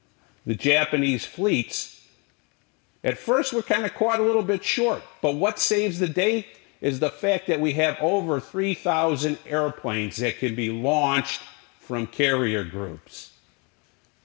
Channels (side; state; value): right; quieter; 31.8 dB